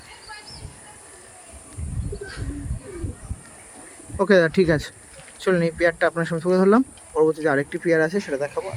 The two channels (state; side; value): identical; both; correlation 1.00